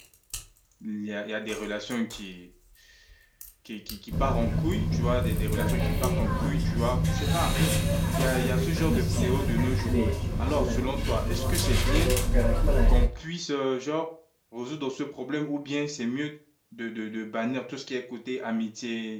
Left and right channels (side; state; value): both; identical; correlation 1.00